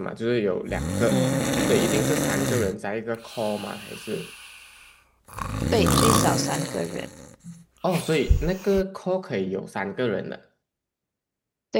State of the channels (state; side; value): identical; both; correlation 1.00